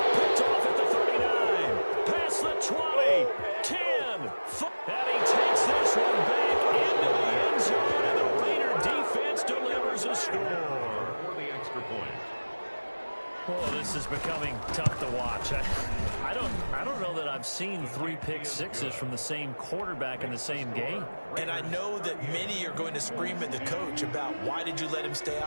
Picked off at the 39. Past the 20. 10. And he takes this one back into the end zone, and the Raider defense delivers a score. For the extra point. Oh, this is becoming tough to watch. I don't know that I've seen 3 pick sixes from the same quarterback in the same game. And I know that many are going to scream at the coach about why did you let him stay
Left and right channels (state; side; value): inverted; both; correlation -1.00